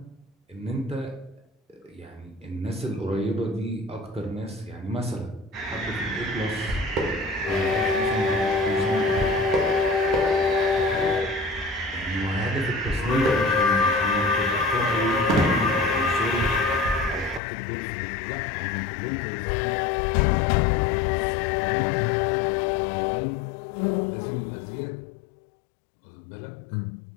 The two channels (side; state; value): right; drops out; at 17.4 s